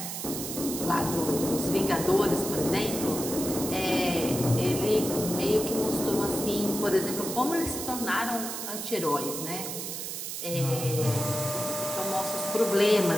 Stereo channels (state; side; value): noise; right; hiss, 6 dB below the sound